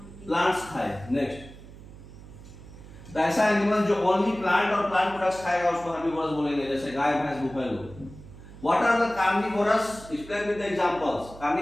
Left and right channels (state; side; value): noise; right; hum, 17 dB below the sound